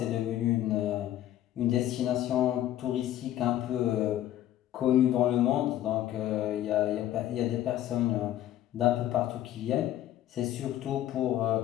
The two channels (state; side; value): quieter; right; 12.7 dB